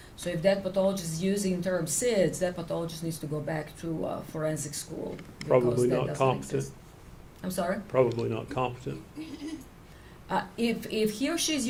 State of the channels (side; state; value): both; identical; correlation 1.00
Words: So if that pathologist is using the term SIDS, that pathologist needs to go back to forensic school. Probably not competent. Exist. I'm sorry? Probably not competent. If he or she is